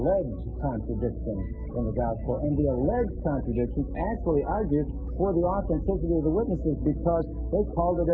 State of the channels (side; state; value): both; identical; correlation 1.00